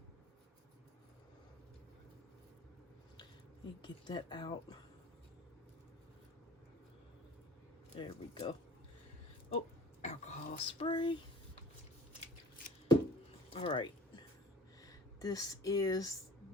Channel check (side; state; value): both; normal; correlation 0.45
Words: Let me get that out. There we go. Oh, alcohol spray. All right. This is